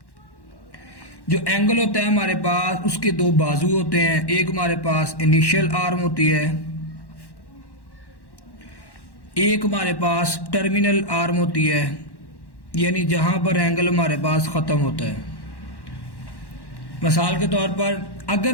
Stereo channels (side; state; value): right; late; 1.1 ms